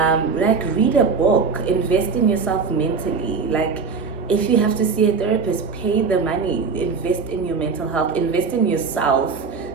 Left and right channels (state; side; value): quieter; left; 5.1 dB